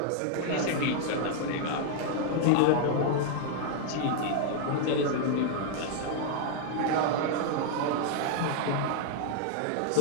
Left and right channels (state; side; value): different; both; correlation 0.00